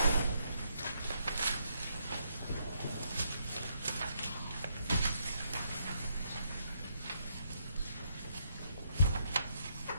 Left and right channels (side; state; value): both; inverted; correlation -0.76